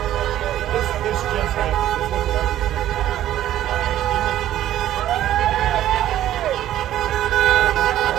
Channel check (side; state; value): left; quieter; 12.7 dB